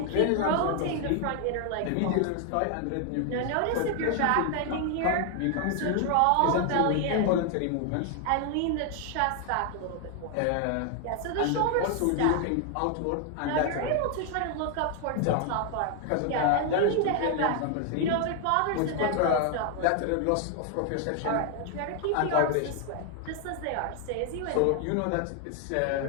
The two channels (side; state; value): both; different; correlation 0.00